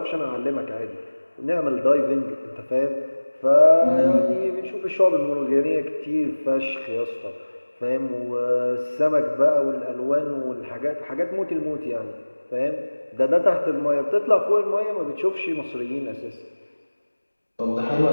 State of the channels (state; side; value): inverted; both; correlation -1.00